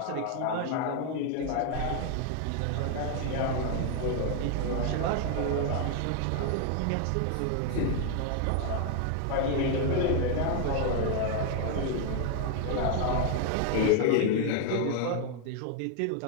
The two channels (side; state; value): both; different; correlation 0.00